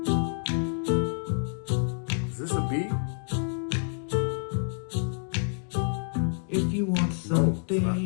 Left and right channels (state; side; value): silent; right; 56 dB below the other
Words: If you want something,